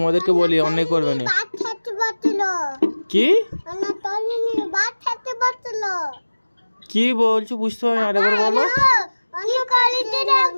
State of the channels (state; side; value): inverted; both; correlation -1.00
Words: বলি অন্যায় করবে না। বাদ খেতে পারছিল। কি? না তলিনি বাদ খেতে পারছিল। কি বলছো বুঝতে পারি না, আরেকবার বলো। অন্য কালিতে